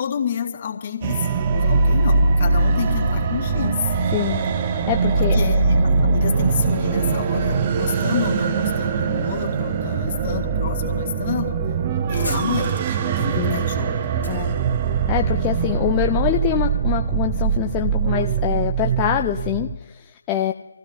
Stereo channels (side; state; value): both; inverted; correlation -0.57